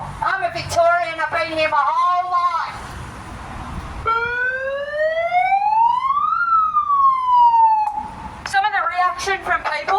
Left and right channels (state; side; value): identical; both; correlation 1.00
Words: I'm a Victorian. I've been here my whole life. Some of the reaction from